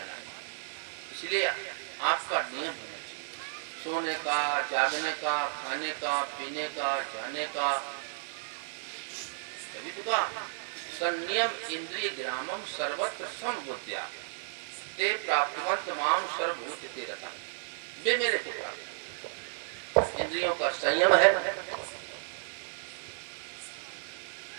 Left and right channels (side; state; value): left; silent; digital silence